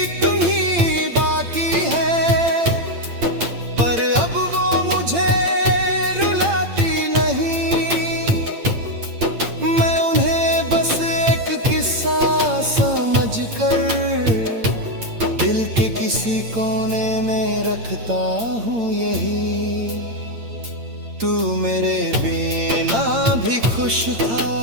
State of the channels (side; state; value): left; late; 8.8 ms